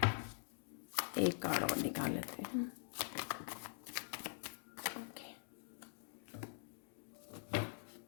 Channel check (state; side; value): silent; right; digital silence